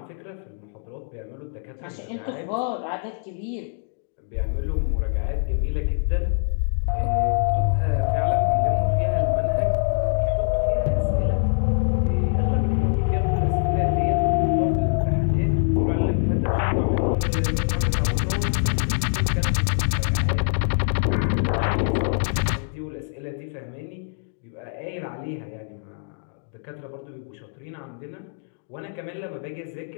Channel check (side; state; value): right; silent; digital silence